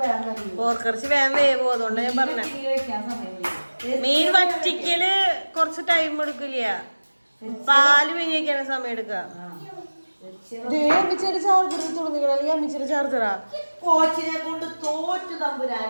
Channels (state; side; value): inverted; both; correlation -1.00